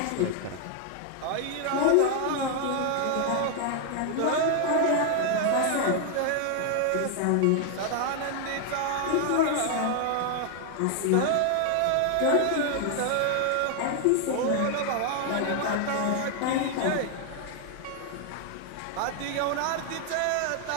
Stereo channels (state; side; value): different; both; correlation 0.00